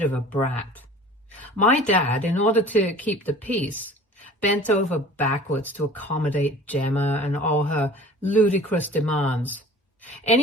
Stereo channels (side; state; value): both; normal; correlation 0.44